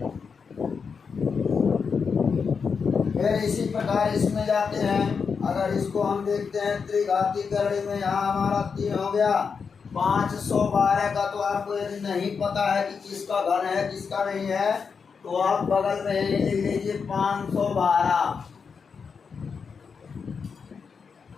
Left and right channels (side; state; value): right; quieter; 5.7 dB